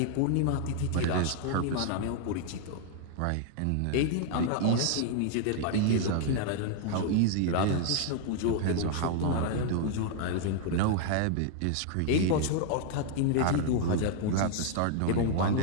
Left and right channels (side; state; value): both; different; correlation -0.01